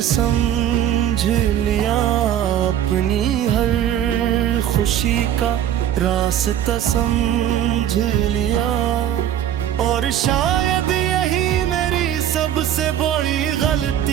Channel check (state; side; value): quieter; left; 10.8 dB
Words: समझ लिया। अपनी हर खुशी का रास्ता समझ लिया, और शायद यही मेरी सबसे बड़ी